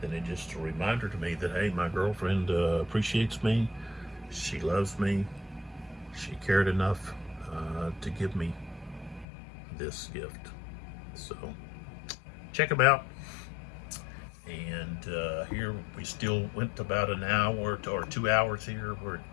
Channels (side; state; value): right; drops out; at 9.2 s